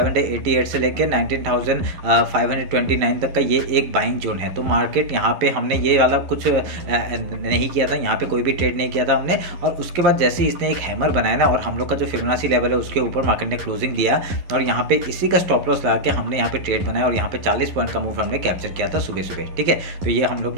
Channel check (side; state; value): left; late; 11 ms